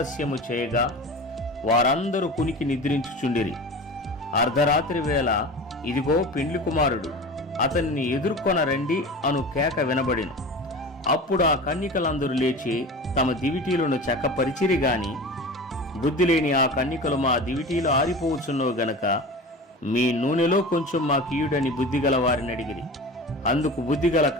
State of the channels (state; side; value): normal; both; correlation 0.33